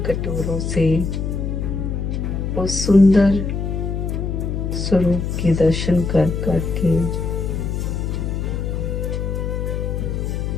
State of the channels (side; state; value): left; noise; hum, 2 dB below the sound